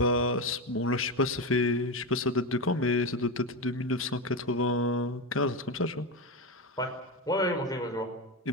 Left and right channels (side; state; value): both; normal; correlation 0.15